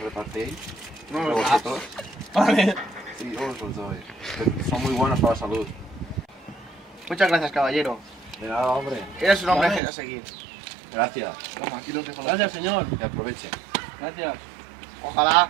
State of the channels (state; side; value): drops out; left; at 9.8 s